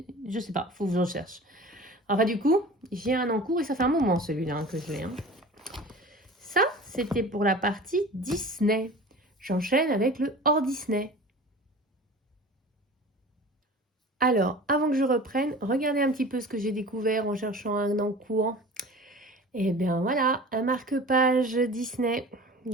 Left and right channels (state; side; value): normal; both; correlation 0.39